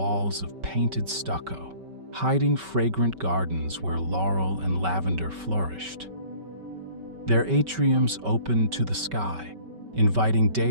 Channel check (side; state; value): left; late; 5.2 ms